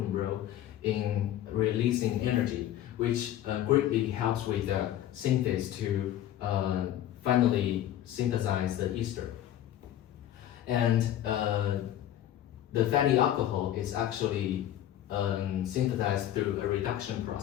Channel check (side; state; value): right; quieter; 12.1 dB